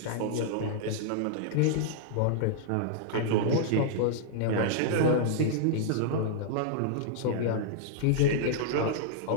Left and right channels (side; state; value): both; different; correlation -0.01